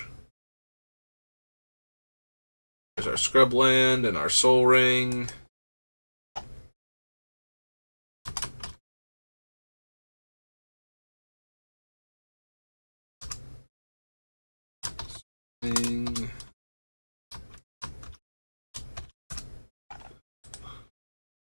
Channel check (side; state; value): both; inverted; correlation -1.00